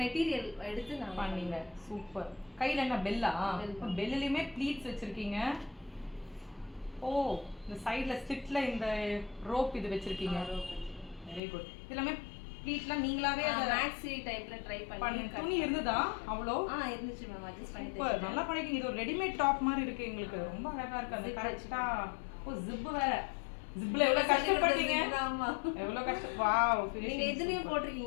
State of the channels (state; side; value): drops out; right; at 11.4 s